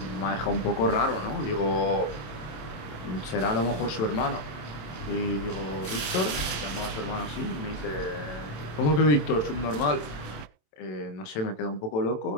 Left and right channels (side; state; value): right; late; 27 ms